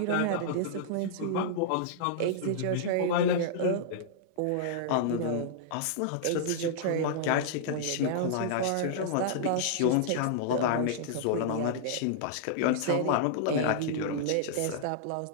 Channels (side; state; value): both; different; correlation -0.02